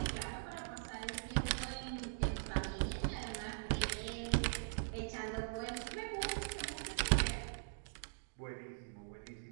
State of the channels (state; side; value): silent; left; digital silence